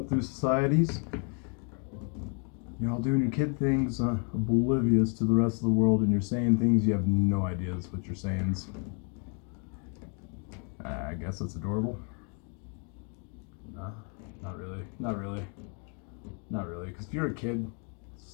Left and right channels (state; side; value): quieter; right; 39.9 dB